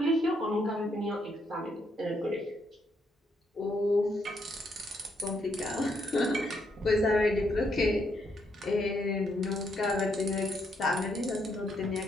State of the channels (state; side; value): normal; both; correlation 0.75